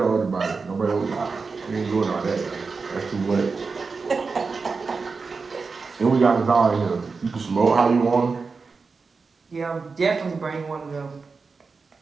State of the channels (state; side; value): quieter; left; 4.6 dB